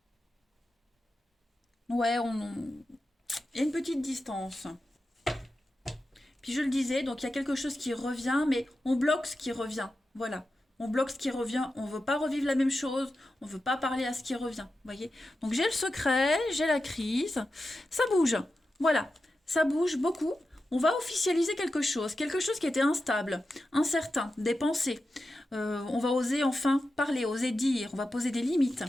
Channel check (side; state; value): both; normal; correlation 0.91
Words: Ouais, il y a une petite distance. Puis je le disais, donc il y a quelque chose qui revient, mais on bloque ce qui revient. Voilà. On bloque ce qui revient. On ne veut pas revivre la même chose. On ne veut pas parler à ce qui revient. Voyez. Donc j'ai le secret, j'ai la crise. Ça bouge. Voilà. Ça bouge beaucoup. On va officialiser quelque chose qui était instable, incertain, des pensées. On va oser enfin parler, oser dire, on va poser des limites.